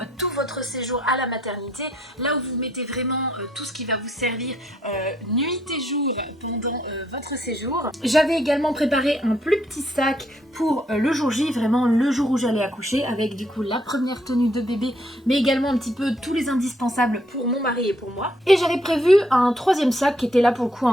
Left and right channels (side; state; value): both; normal; correlation 0.70